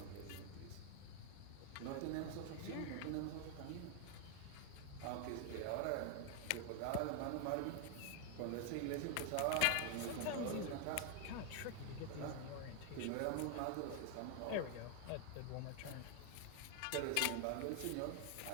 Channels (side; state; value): both; different; correlation 0.00